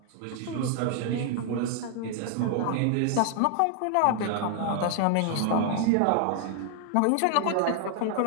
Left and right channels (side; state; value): both; different; correlation 0.00